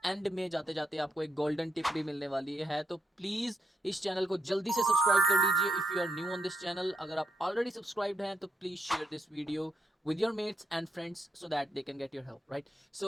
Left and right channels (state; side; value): normal; both; correlation 0.80